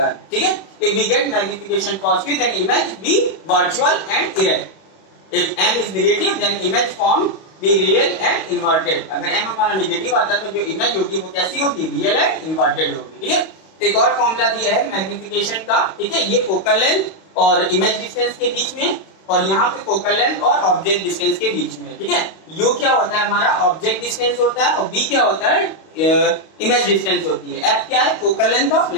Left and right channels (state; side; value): late; right; 32 ms